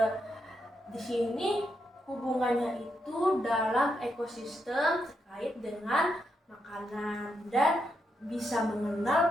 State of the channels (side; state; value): both; normal; correlation 0.82